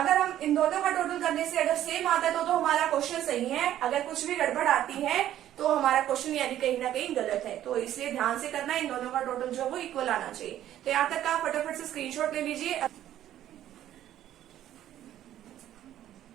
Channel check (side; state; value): left; quieter; 12.1 dB